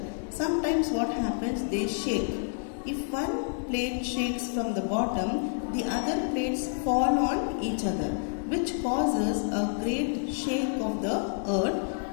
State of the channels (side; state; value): right; silent; 59 dB below the other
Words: Sometimes what happens, they shake. If one plate shakes from the bottom, the other plates fall on each other, which causes a great shake of the